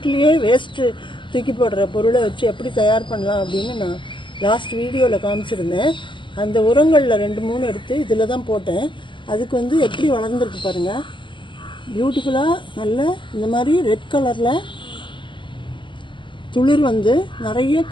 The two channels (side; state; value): right; late; 0.24 ms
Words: வேஸ்ட் தூக்கி போடுற பொருளை வச்சு எப்படி தயார் பண்ணலாம் அப்படின்னு நான் லாஸ்ட் வீடியோவில் காமிச்சிருந்தேன். அந்த உரங்களில் 2-3 எடுத்து இதில் தான் போட்டேன். அதுக்கு வந்து எப்படி வளர்ந்துருக்கு பாருங்கள், பியூட்டிஃபுல்லாக நல்ல இந்த மாதிரி ரெட் கலரில் துளிர் வந்து நிறைய